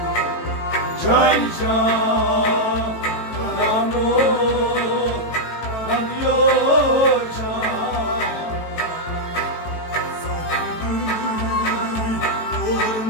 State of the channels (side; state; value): right; late; 18 ms